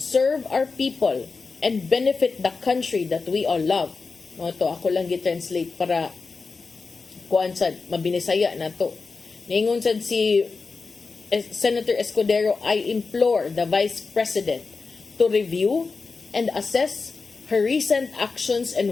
our people and benefit the country that we all love? Mo to ako lang gi-translate para kuan sad mabinisaya nato. Ningon sad si Senator Escudero, I implore the Vice President to review and assess her recent actions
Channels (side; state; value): right; quieter; 4.4 dB